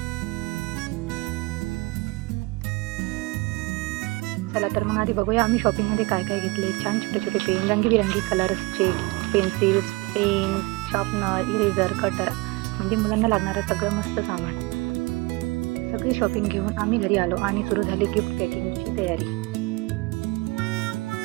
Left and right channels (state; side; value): quieter; left; 24.0 dB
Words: चला तर मग आधी बघूया आम्ही शॉपिंगमध्ये काय काय घेतले. छान छोटे छोटे पेन, रंगीबिरंगी कलर्सचे pencils, pen, sharpener, eraser, cutter, म्हणजे मुलांना लागणारं सगळं मस्त सामान. सगळी शॉपिंग घेऊन आम्ही घरी आलो आणि सुरू झाली गिफ्ट पॅकिंगची तयारी.